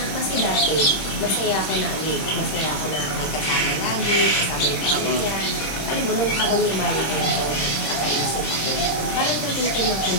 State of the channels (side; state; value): right; late; 26 ms